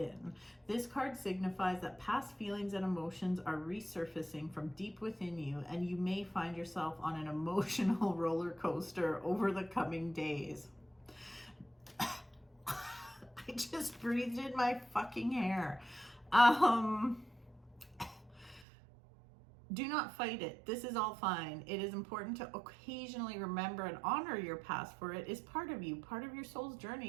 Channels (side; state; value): left; drops out; at 18.7 s